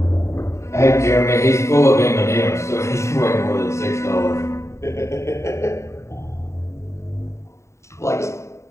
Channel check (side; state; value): right; late; 0.14 ms